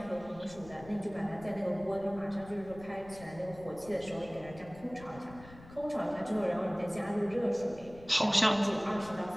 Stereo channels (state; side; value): noise; left; rumble, 18 dB below the sound